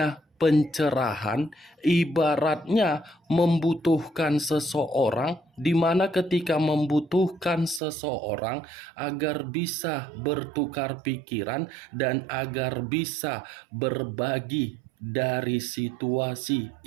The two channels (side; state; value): left; drops out; at 7.8 s